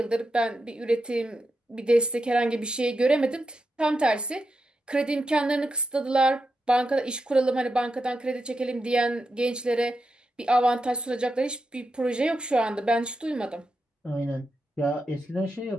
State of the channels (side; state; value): both; normal; correlation 0.87